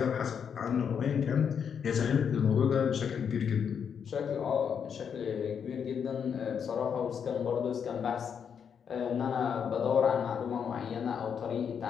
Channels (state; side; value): quieter; right; 7.3 dB